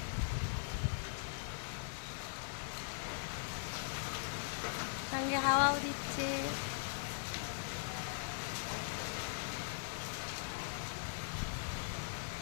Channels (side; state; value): right; silent; digital silence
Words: সঙ্গে হাওয়াও দিচ্ছে।